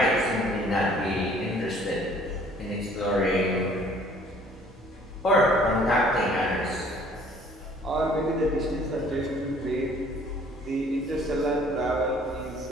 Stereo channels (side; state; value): both; normal; correlation 0.56